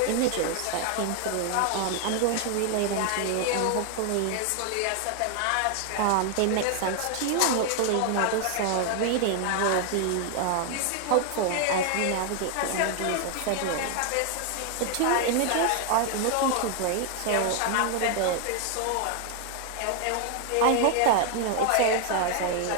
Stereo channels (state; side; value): different; both; correlation 0.00